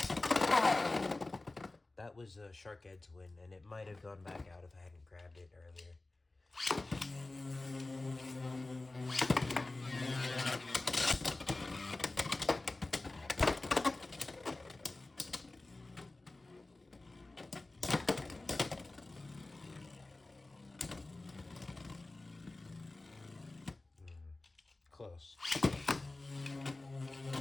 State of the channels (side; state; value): right; quieter; 3.0 dB